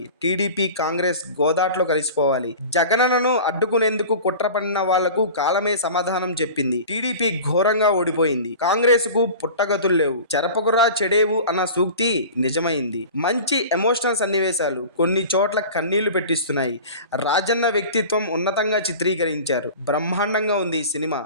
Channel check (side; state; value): both; inverted; correlation -0.37